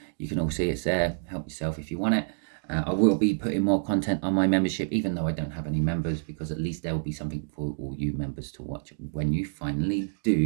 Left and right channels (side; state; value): left; silent; digital silence